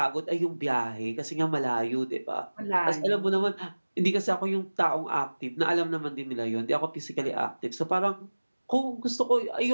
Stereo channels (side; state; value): both; inverted; correlation -1.00